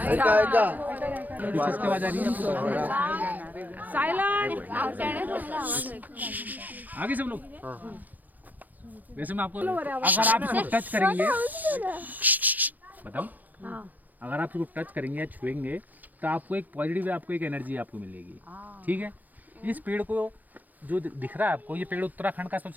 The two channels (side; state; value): left; late; 0.083 ms